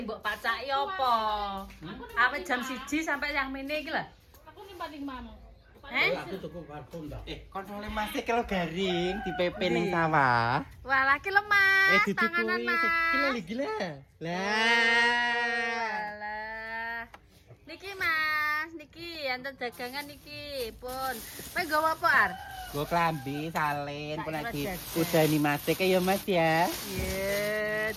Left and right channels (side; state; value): both; identical; correlation 1.00